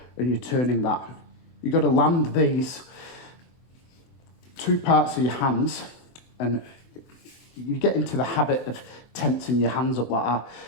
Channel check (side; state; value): right; late; 24 ms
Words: and you're turning that. You've got to land these two parts of your hands, and you get into the habit of tensing your hands up like that.